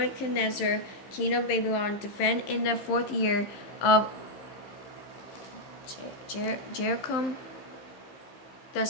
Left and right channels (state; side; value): late; right; 15 ms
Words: king of Babylon, defended in the 4th year of Jeroboam, the